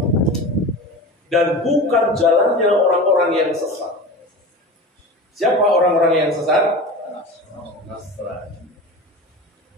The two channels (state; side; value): normal; both; correlation 0.31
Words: Dan bukan jalannya orang-orang yang sesat. Siapa orang-orang yang sesat? Nasrani.